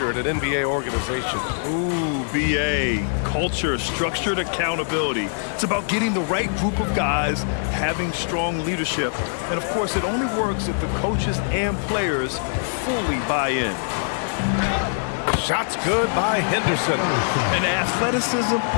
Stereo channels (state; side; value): silent; right; digital silence